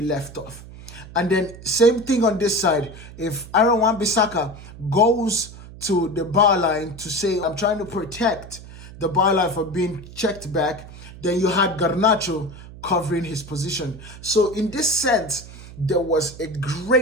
left off. And then same thing on this side. If Aaron Wan-Bissaka goes to the bar line to say, I'm trying to protect the bar line from being checked back, then you had Garnacho covering his position. So in this sense, there was a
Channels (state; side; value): noise; right; hum, 16 dB below the sound